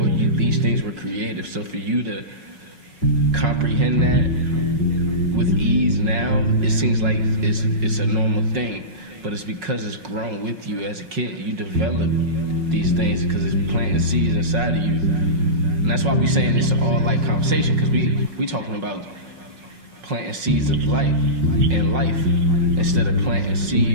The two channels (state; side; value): late; left; 5.4 ms